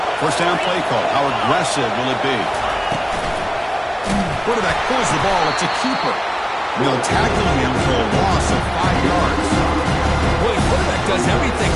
First down play call. How aggressive will it be? Quarterback pulls the ball. It's a keeper. They'll tackle him for a loss of 5 yards. Well, the quarterback does everything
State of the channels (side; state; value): both; identical; correlation 1.00